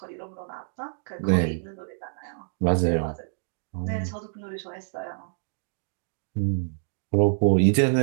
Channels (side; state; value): left; silent; digital silence